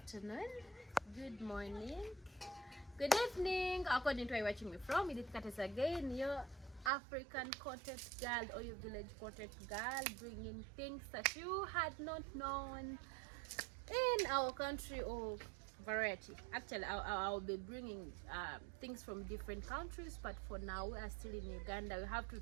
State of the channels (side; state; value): left; drops out; at 6.9 s